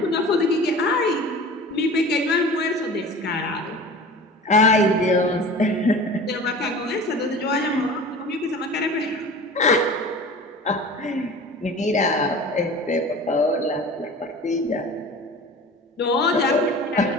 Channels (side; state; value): both; normal; correlation 0.39